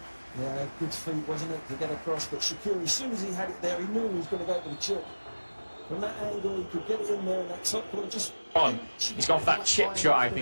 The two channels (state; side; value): inverted; both; correlation -1.00